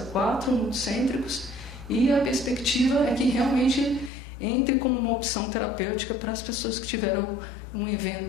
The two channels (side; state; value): right; drops out; at 4.1 s